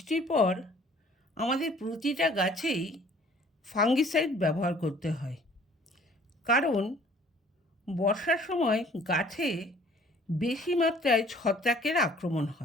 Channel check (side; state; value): both; normal; correlation 0.55